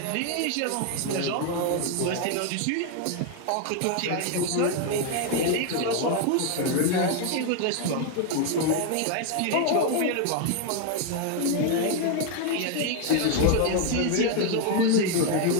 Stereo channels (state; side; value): different; both; correlation 0.01